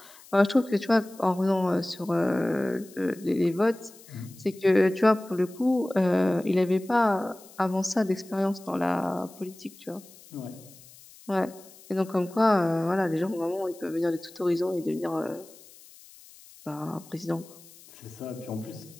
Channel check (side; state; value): left; noise; hiss, 22 dB below the sound